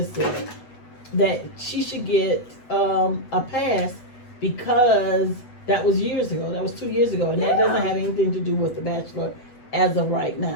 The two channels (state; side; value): late; right; 8.0 ms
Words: said, that she should get a pass because that was years ago. That was 2 years ago, and that doesn't have anything to do with The Bachelor as of right